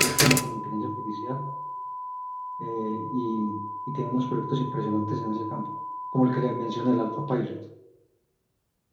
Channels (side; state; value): both; identical; correlation 1.00